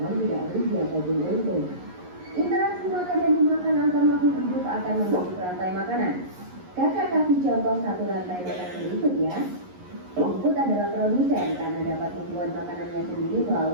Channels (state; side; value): late; left; 11 ms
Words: tidak rugi ataupun untung. Interaksi makan dan dimakan antar makhluk hidup akan membentuk rantai makanan. Kakak kasih contoh satu rantai makanan berikut ya. Rumput adalah produsen karena dapat membuat makanannya sendiri